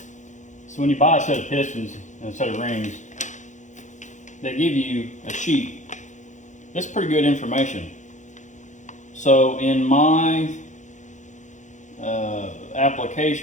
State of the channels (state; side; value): late; right; 0.35 ms